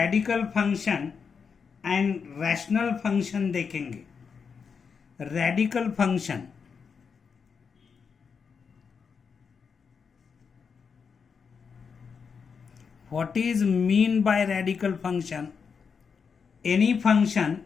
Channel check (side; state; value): right; quieter; 6.0 dB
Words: function and rational function देखेंगे। Radical function what is mean by radical function? Any function